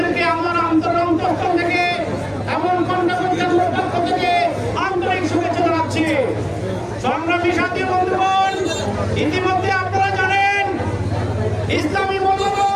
আমার অন্তঃস্থল থেকে এবং খণ্ডপথ কেন্দ্রের পক্ষ থেকে আন্তরিক শুভেচ্ছা জানাচ্ছি। সংগ্রামী সাথী বন্ধুগণ, ইতিমধ্যে আপনারা জানেন ইসলামী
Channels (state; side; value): identical; both; correlation 1.00